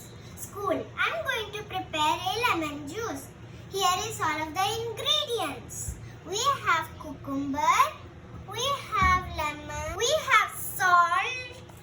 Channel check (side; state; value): both; identical; correlation 1.00